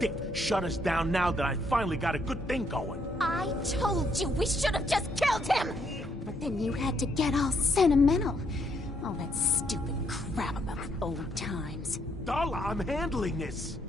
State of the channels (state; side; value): normal; both; correlation 0.73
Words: dick shut us down now that I finally got a good thing going. I told you we should have just killed him! But then you had to get all sentimental. All that stupid crap about old times. Darla, I'm handling this.